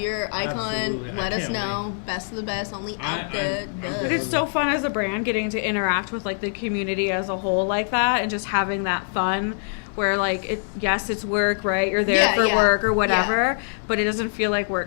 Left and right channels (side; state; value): right; silent; digital silence